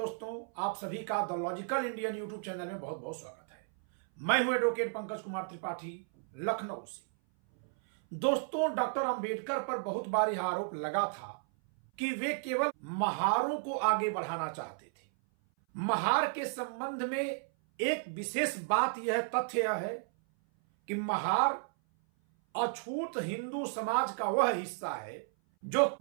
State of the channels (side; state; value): left; silent; 55 dB below the other